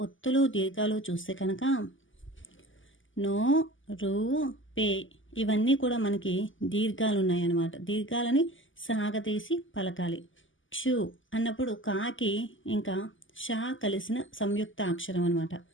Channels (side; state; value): right; late; 0.57 ms